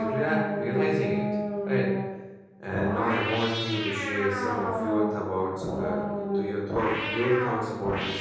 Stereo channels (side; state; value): both; identical; correlation 1.00